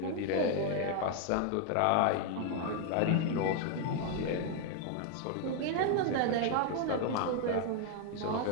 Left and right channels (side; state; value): both; different; correlation 0.00